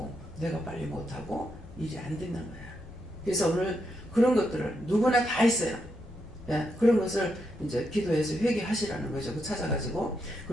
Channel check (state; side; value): normal; both; correlation 0.82